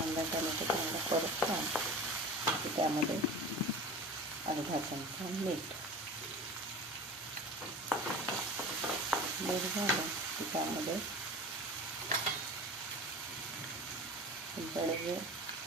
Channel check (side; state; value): both; normal; correlation 0.36